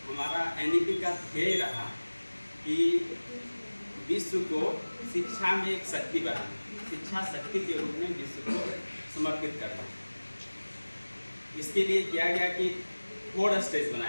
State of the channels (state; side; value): inverted; both; correlation -1.00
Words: हमारा NEP का ध्येय रहा कि विश्व को शिक्षा में एक शक्ति बनाना, शिक्षा शक्ति के रूप में विश्व को समर्पित करना। इसके लिए किया गया कि 4 स्टेज